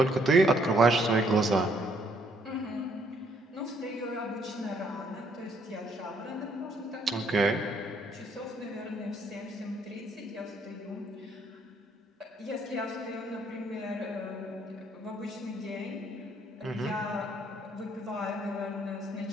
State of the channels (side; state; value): both; normal; correlation 0.68